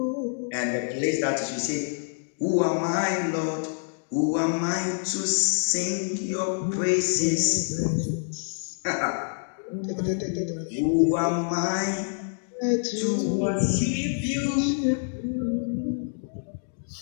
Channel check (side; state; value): right; silent; digital silence